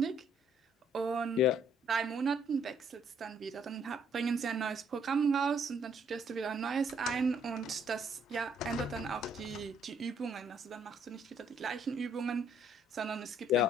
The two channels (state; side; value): normal; both; correlation 0.66